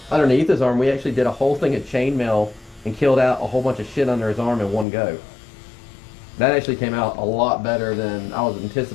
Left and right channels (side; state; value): right; drops out; at 4.9 s